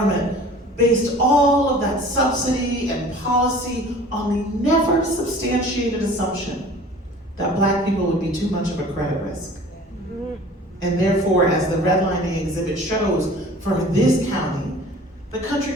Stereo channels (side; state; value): both; normal; correlation 0.46